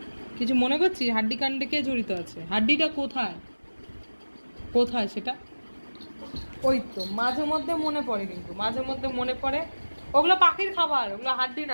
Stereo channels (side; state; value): both; inverted; correlation -1.00